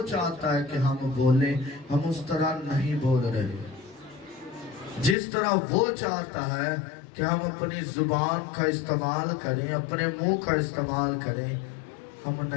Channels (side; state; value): right; drops out; at 5.2 s